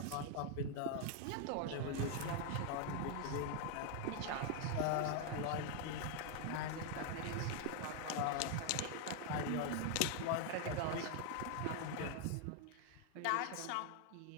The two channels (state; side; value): different; both; correlation 0.00